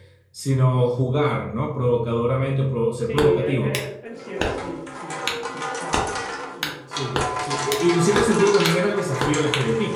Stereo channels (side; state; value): both; identical; correlation 1.00